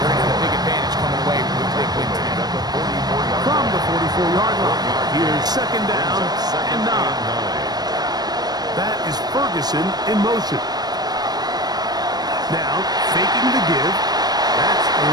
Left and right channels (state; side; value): late; left; 0.19 ms